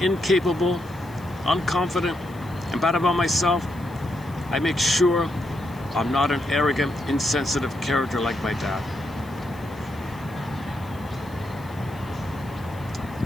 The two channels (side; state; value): left; noise; hiss, 25 dB below the sound